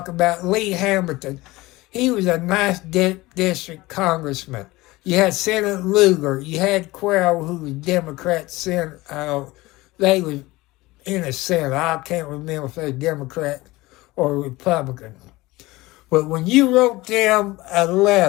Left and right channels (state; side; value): quieter; right; 20.2 dB